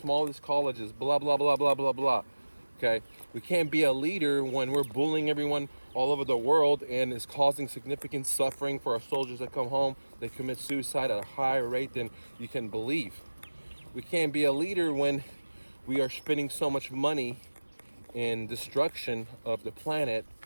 colleges, blah, blah, blah, blah, blah, blah. Okay? We can't be a leader when we're bullying everyone all over the world and is causing significant suffering for our soldiers that come home. They commit suicide at a higher rate than you can believe. We can't be a leader when we are spending so much money in destruction of the planet,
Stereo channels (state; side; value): inverted; both; correlation -1.00